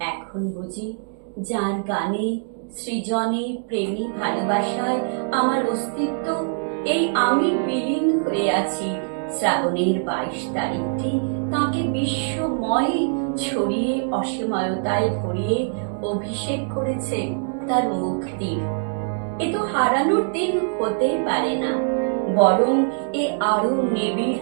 এখন বুঝি যার গানে সৃজনে, প্রেমী, ভালোবাসায় আমার অস্তিত্ব, এই আমি বিলীন হয়ে আছি। শ্রাবণের 22 তারিখটি তাকে বিশ্বময় ছড়িয়ে অসীমতায় ভরিয়ে অভিষেক করেছে তার মুক্তির। এ তো হারানোর দিন হতেই পারে না, বরং এ আরো নিবিড়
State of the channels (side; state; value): left; silent; digital silence